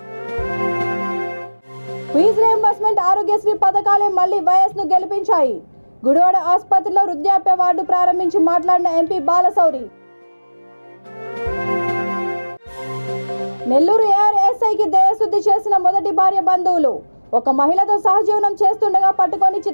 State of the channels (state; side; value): inverted; both; correlation -1.00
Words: ఫీజు రీయింబర్స్మెంట్, ఆరోగ్యశ్రీ పథకాలే మళ్లీ వైఎస్ ను గెలిపించాయి. గుడివాడ ఆసుపత్రిలో వృద్ధాప్య వార్డు ప్రారంభించి మాట్లాడిన ఎంపీ బాలశౌరి. నెల్లూరు ARSIకి దేహశుద్ధి చేసిన మొదటి భార్య బంధువులు. ఒక మహిళతో సహజీవనం చేస్తుండగా పట్టుకొని